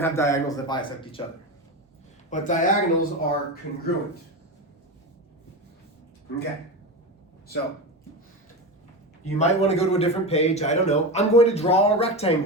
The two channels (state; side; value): normal; both; correlation 0.21